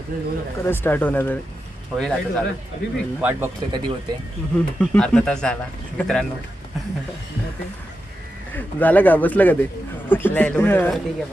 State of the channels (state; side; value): normal; both; correlation 0.89